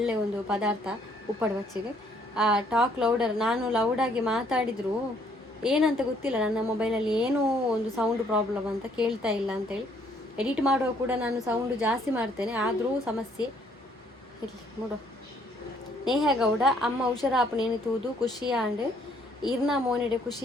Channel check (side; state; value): both; normal; correlation 0.65